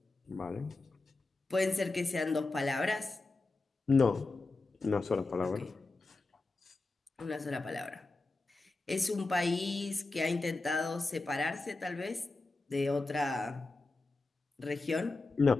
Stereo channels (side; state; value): right; quieter; 3.3 dB